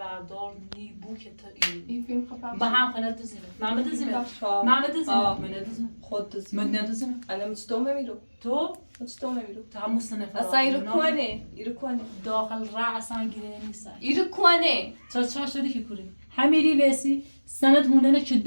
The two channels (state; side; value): inverted; both; correlation -1.00